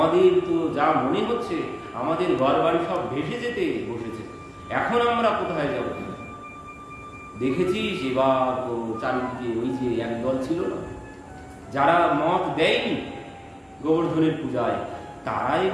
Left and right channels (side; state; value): both; identical; correlation 1.00